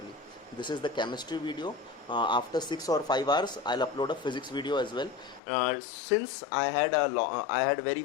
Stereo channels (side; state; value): right; drops out; at 5.4 s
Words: This is the chemistry video. After 6 or 5 hours, I'll upload a physics video as well. Since I had very